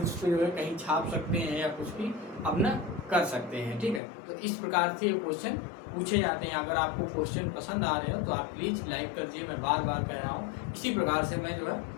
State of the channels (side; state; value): right; drops out; at 4.0 s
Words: पर जो है कहीं छाप सकते हैं या कुछ भी अपना कर सकते हैं, ठीक है। तो इस प्रकार से ये क्वेश्चन पूछे जाते हैं। अगर आपको क्वेश्चन पसंद आ रहे हो तो आप प्लीज़ लाइक कर दीजिए, मैं बार बार कह रहा हूँ। इसी प्रकार से मैं जो